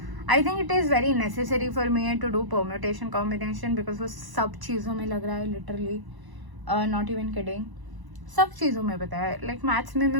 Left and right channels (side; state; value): left; late; 1.0 ms